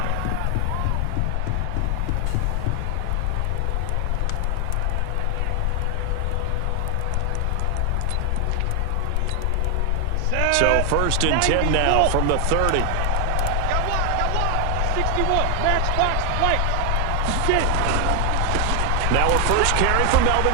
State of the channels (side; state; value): both; different; correlation 0.00